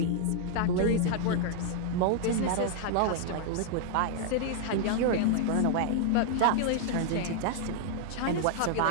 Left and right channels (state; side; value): different; both; correlation 0.00